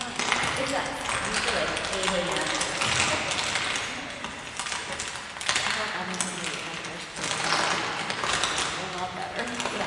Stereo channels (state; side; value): identical; both; correlation 1.00